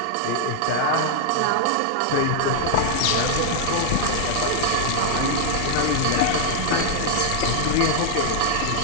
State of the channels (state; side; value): different; both; correlation -0.01